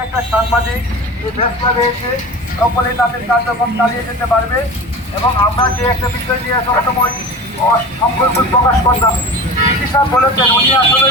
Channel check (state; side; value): normal; both; correlation 0.33